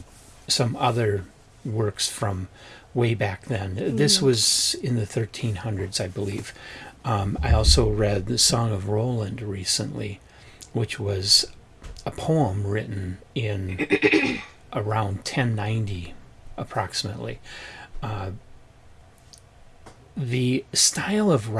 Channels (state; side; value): identical; both; correlation 1.00